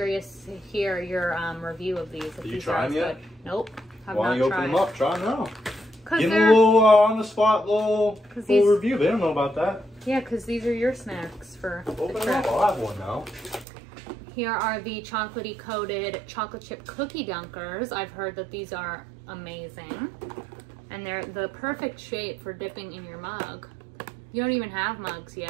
to hear your review of these. If Did you try them yet? Nope. Why don't you open them up? Try them now. Give them a little on-the-spot little review. They don't know about that. Yeah, because these are your snacks for Open them up. I'll have one now. Here are the chocolatey coated chocolate chip cookie dunkers. I've heard that these are amazing. And they're the perfect shape for dipping in your mug. You don't even have mugs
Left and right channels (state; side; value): drops out; left; at 13.7 s